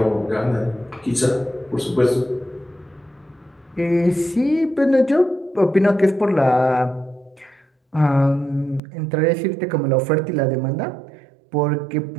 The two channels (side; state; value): left; drops out; at 8.8 s